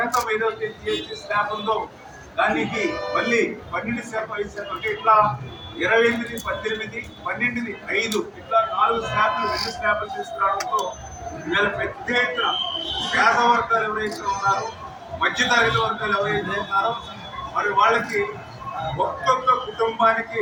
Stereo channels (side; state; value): both; identical; correlation 1.00